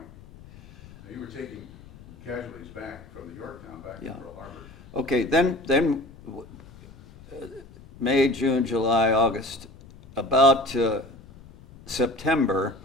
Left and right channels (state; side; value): noise; left; rumble, 20 dB below the sound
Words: Now, you were taking casualties back from the Yorktown back to Pearl Harbor. Okay, then May, June, July, August, about September,